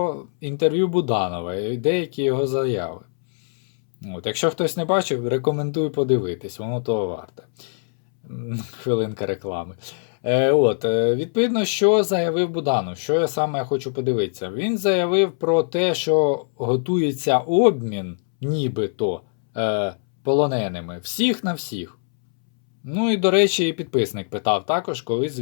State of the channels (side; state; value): right; silent; 64 dB below the other